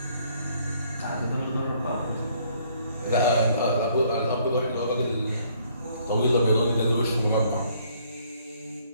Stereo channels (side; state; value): both; inverted; correlation -0.64